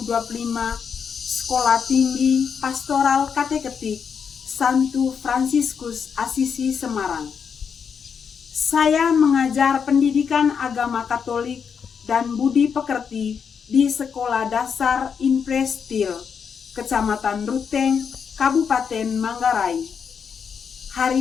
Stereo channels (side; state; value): right; quieter; 6.7 dB